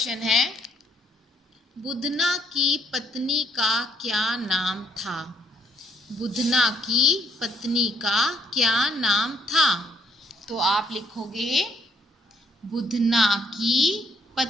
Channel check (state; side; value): normal; both; correlation 0.69